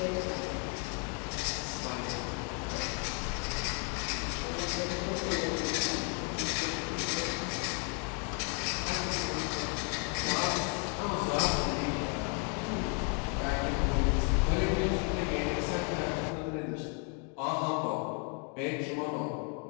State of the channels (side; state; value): right; quieter; 38.6 dB